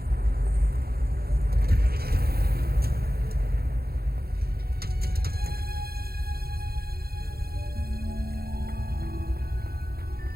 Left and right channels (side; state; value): left; late; 0.45 ms